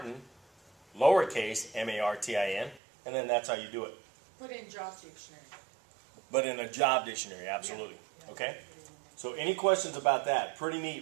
lowercase, M-A-R-T-I-N, and then that's how you do it. Put in job dictionary. But in a job dictionary, absolutely. Yeah. Okay? So any questions about that? Pretty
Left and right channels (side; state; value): left; drops out; at 2.8 s